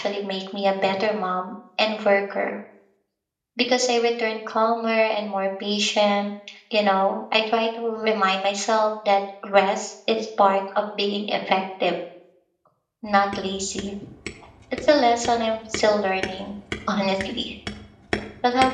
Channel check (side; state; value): both; identical; correlation 1.00